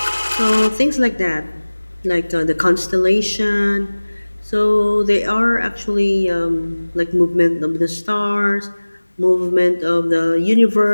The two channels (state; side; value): inverted; both; correlation -1.00